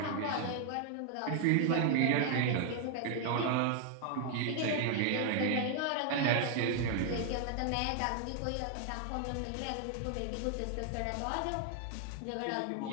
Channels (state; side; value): different; both; correlation 0.00